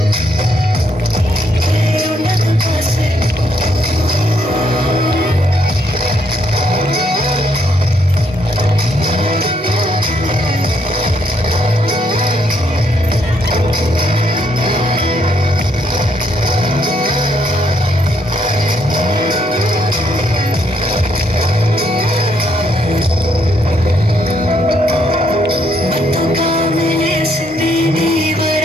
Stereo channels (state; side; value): normal; both; correlation 0.72